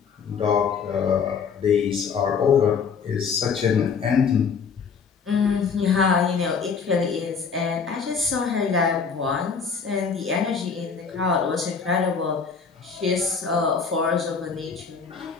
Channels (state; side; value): quieter; right; 5.8 dB